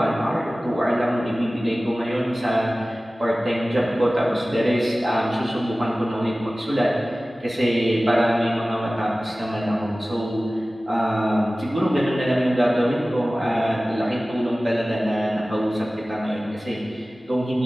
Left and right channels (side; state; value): both; normal; correlation 0.97